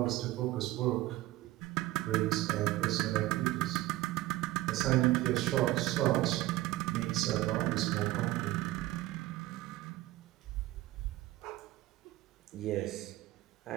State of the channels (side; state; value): left; quieter; 16.9 dB